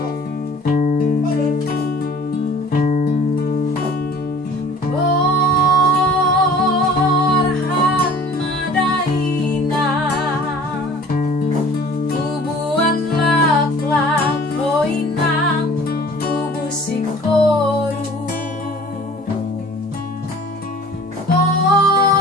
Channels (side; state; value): both; normal; correlation 0.48